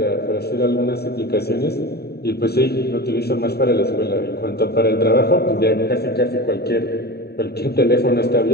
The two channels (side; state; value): right; late; 0.47 ms